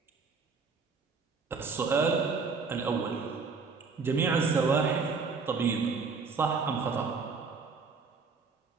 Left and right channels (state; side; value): quieter; left; 4.8 dB